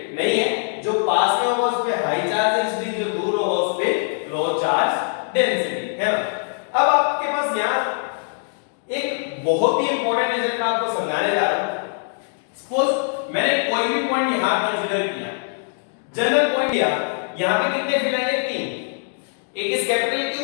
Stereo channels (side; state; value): right; silent; digital silence